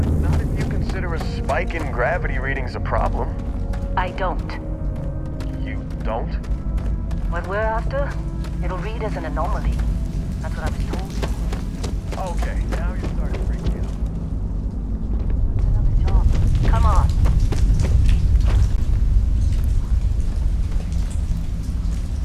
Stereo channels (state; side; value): identical; both; correlation 1.00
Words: Not if you consider a spike in gravity readings a problem. I don't. You don't? What we're after, it'll read as an anomaly. That's what I was told. Okay, now you're starting to freak me out. Another job. Come on.